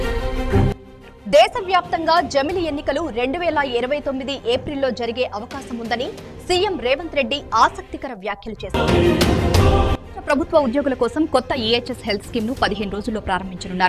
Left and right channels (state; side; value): identical; both; correlation 1.00